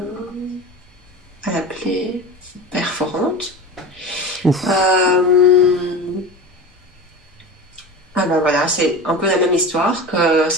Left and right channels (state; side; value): normal; both; correlation 0.30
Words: à la plaie perforante. Ouf. Ah ben voilà, c'est un peu la même histoire que